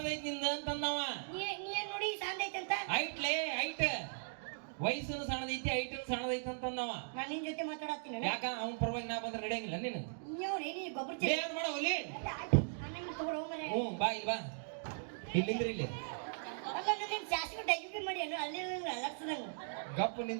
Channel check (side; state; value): left; silent; digital silence